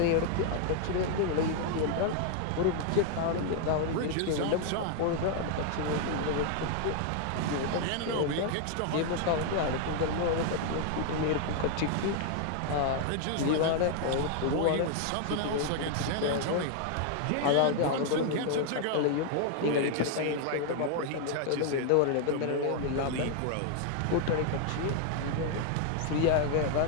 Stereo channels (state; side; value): different; both; correlation 0.00